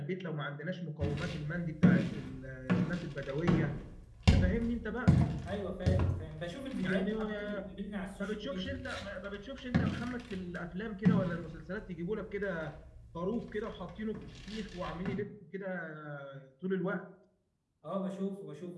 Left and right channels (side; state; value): both; identical; correlation 1.00